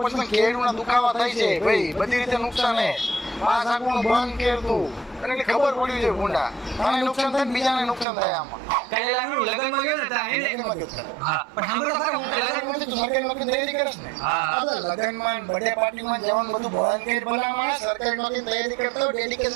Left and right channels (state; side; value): drops out; left; at 8.1 s